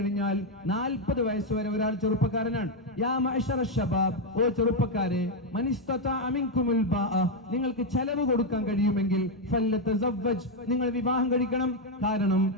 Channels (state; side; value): normal; both; correlation 0.03